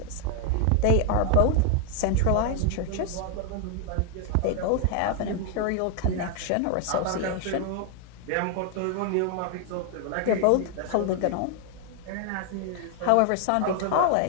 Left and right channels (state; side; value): different; both; correlation 0.00